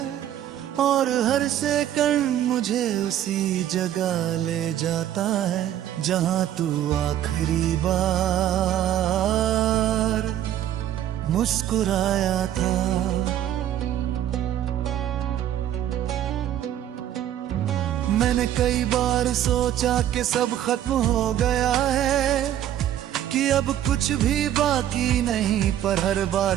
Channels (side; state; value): left; quieter; 11.4 dB